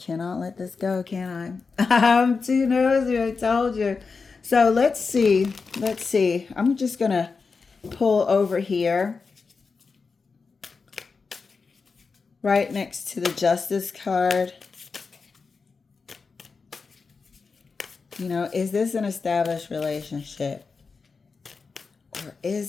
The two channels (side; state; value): right; quieter; 4.7 dB